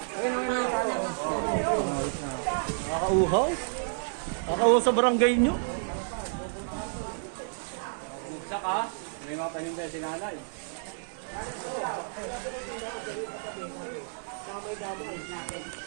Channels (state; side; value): silent; left; digital silence